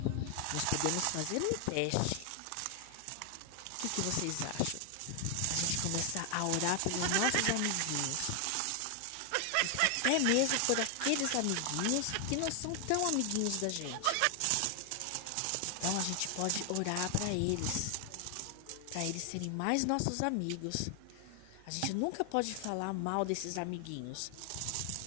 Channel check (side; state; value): both; different; correlation 0.00